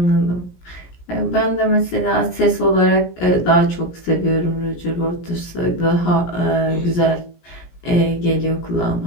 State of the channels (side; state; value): right; late; 17 ms